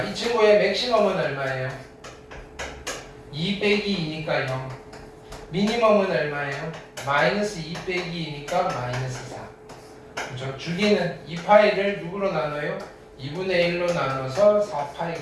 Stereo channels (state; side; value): identical; both; correlation 1.00